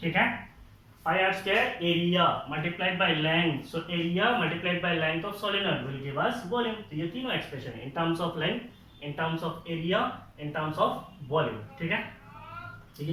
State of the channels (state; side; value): identical; both; correlation 1.00